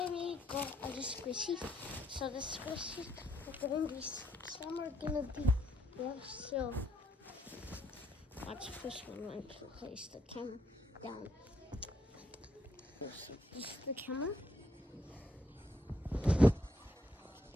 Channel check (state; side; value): normal; both; correlation 0.74